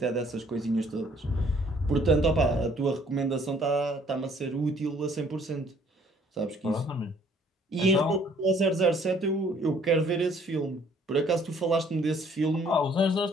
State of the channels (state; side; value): normal; both; correlation 0.60